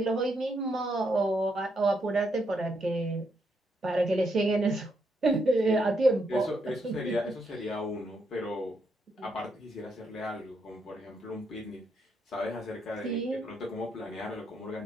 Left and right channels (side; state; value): both; normal; correlation 0.78